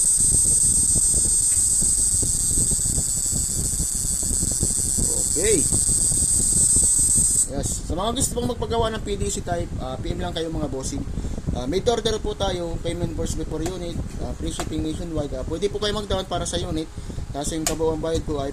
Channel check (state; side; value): identical; both; correlation 1.00